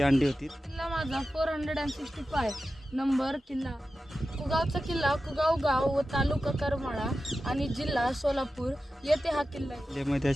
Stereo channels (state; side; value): normal; both; correlation 0.93